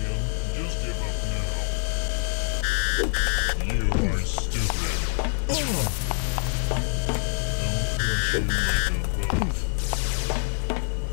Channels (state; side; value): silent; right; 61 dB below the other